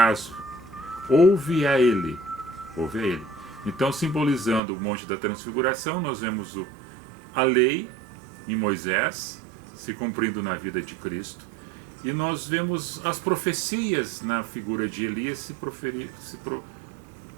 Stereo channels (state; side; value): drops out; left; at 4.6 s